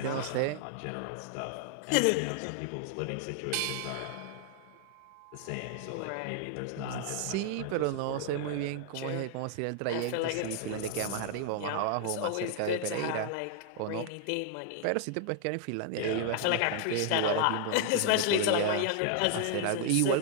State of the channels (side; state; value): both; different; correlation 0.00